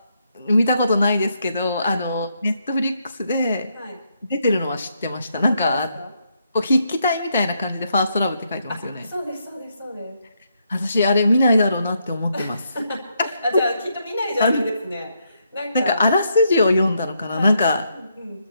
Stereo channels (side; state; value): both; inverted; correlation -0.78